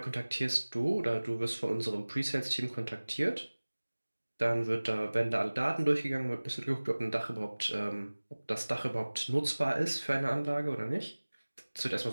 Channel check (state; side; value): inverted; both; correlation -1.00